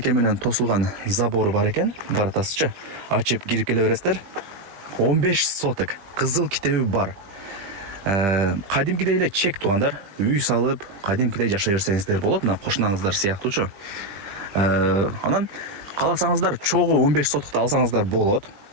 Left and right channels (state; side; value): late; left; 20 ms